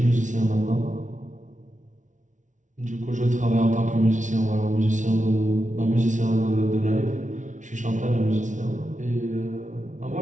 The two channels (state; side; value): late; left; 0.37 ms